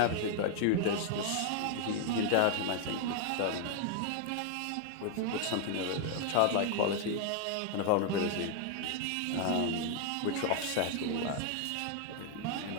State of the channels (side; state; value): both; different; correlation 0.00